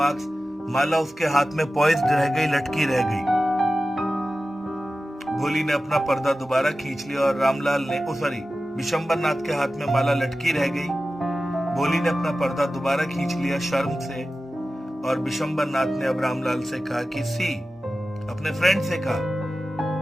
माला उसके हाथ में poised रह गई, लटकी रह गई. भोली ने अपना पर्दा दोबारा खींच लिया और रामलाल ने बिशंबर नाथ के हाथ में माला लटकी रह गई. भोली ने अपना पर्दा दोबारा खींच लिया शर्म से, और बिशंबर नाथ ने अब रामलाल से कहा कि अपने फ्रेंड से कहा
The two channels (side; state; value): both; normal; correlation 0.94